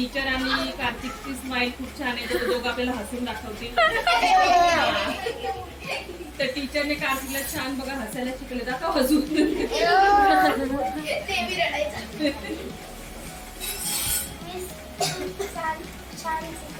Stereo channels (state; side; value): identical; both; correlation 1.00